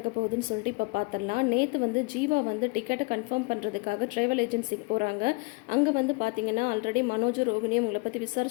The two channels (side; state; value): right; quieter; 28.6 dB